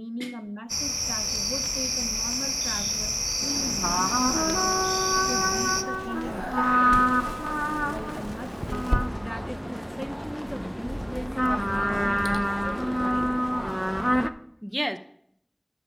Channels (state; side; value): identical; both; correlation 1.00